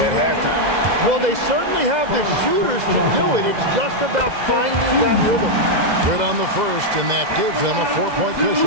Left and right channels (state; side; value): late; left; 2.0 ms